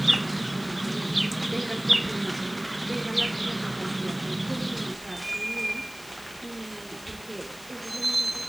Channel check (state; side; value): noise; left; hiss, 18 dB below the sound